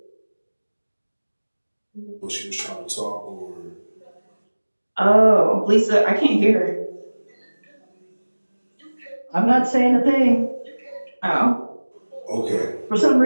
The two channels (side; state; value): both; inverted; correlation -1.00